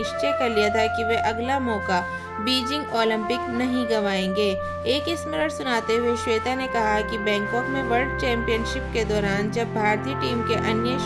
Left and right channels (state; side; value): identical; both; correlation 1.00